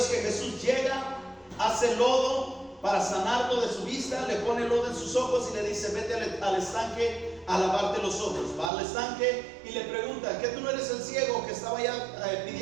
que Jesús llega, hace lodo para sanarlo de su vista, le pone lodo en sus ojos y le dice: vete al estanque a lavarte los ojos. Va al estanque y le pregunta: ¿qué tú no eres el ciego que estaba ya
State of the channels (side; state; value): left; drops out; at 8.7 s